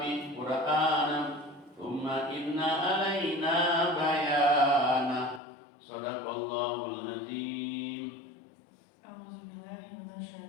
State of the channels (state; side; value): drops out; right; at 5.4 s